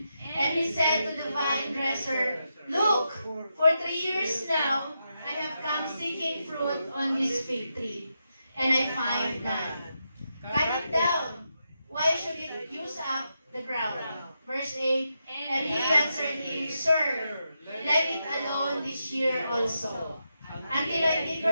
and he said to the vine dresser, look, for 3 years now I have come seeking fruit on this fig tree, and I find none. Cut it down. Why should it use up the ground? Verse 8, and he answered him, Sir, let it alone this year also, until I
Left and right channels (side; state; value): both; inverted; correlation -0.85